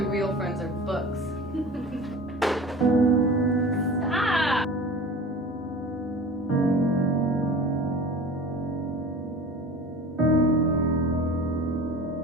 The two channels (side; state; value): both; normal; correlation 0.38